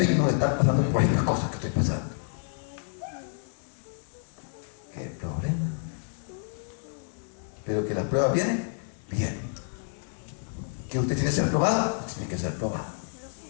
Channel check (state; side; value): silent; right; 57 dB below the other